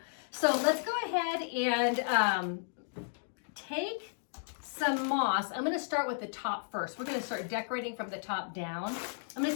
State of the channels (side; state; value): right; silent; digital silence